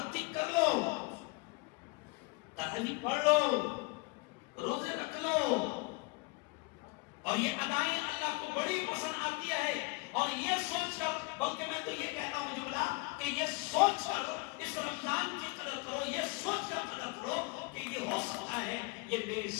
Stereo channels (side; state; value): right; quieter; 26.9 dB